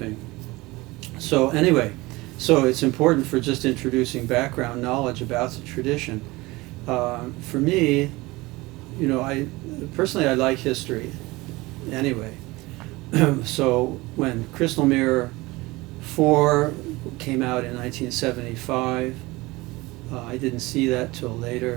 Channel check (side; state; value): left; quieter; 21.5 dB